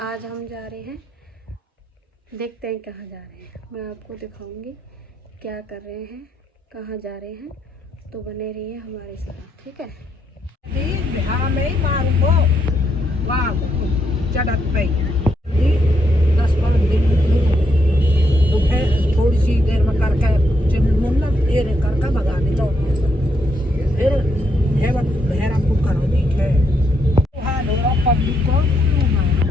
आज हम जा रहे हैं, देखते हैं कहाँ जा रहे हैं, मैं आपको दिखाऊंगी क्या कर रहे हैं, कहाँ जा रहे हैं। तो बने रहिए हमारे साथ, ठीक है। थोड़ी सी देर में करके मुन्ना फिर करके भगाने लो, फिर हेरा करो देखे पब्लिक को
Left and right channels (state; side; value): normal; both; correlation 0.77